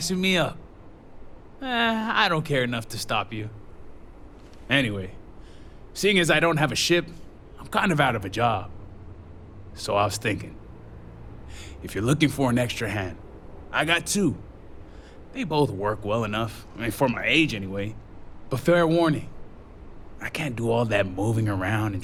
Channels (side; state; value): both; identical; correlation 1.00